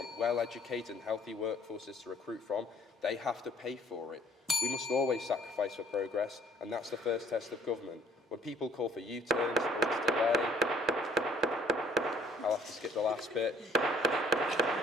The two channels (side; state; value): both; normal; correlation 0.60